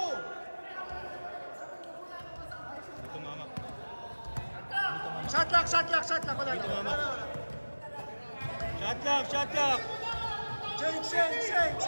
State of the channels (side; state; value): both; inverted; correlation -1.00